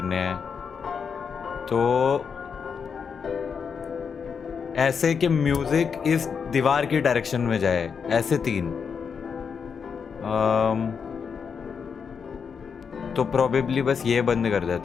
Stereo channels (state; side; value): quieter; right; 6.3 dB